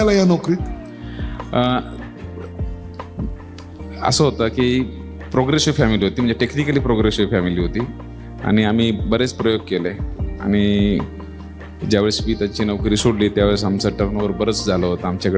या नोकरीत? असं होतं की प्रोग्रेसिव्ह फॅमिली होती, म्हणजे टेक्निकली प्रोग्रेसिव्ह फॅमिली होती आणि आम्ही बरेच प्रयोग केले. आणि ज्यावेळेस मी त्याची नोकरी सोडली त्यावेळेस आमचं टर्नओव्हर बरंच झालं होतं.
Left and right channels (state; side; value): identical; both; correlation 1.00